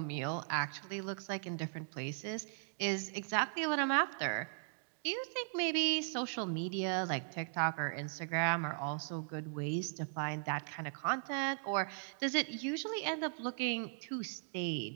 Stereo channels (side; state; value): left; silent; digital silence